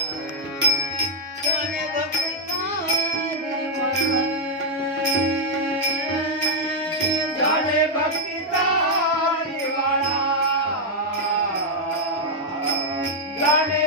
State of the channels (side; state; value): both; normal; correlation -0.02